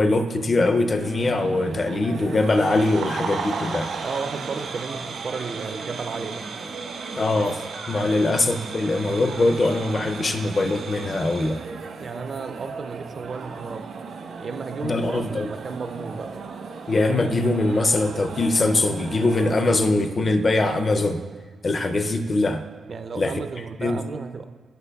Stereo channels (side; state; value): both; normal; correlation 0.88